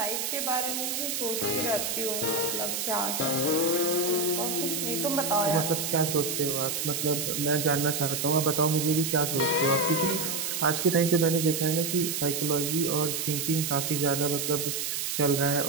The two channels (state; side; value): noise; right; hiss, 2 dB below the sound